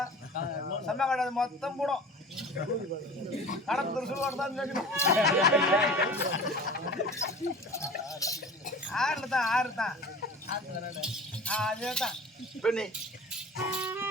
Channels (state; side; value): normal; both; correlation 0.39